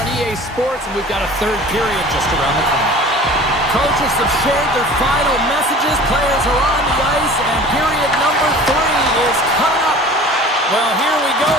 EA Sports, and we've got a third period just around the corner. Coaches have shared their final messages. Players are on the ice, and period number 3 is coming up. Well, here we go.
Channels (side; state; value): both; normal; correlation 0.43